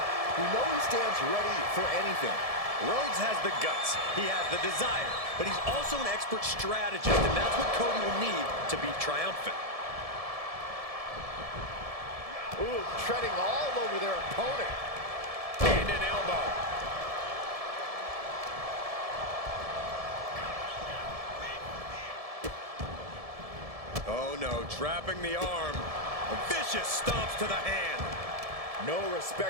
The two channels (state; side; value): late; left; 1.7 ms